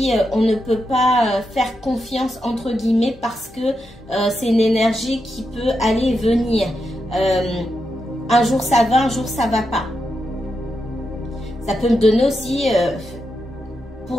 on ne peut pas faire confiance, entre guillemets, parce que c'est une énergie qui peut aller et venir. Un jour ça va, un jour ça va pas. Ça peut me donner aussi,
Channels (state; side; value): normal; both; correlation 0.85